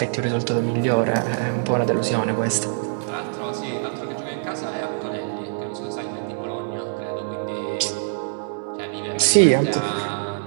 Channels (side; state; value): left; silent; 63 dB below the other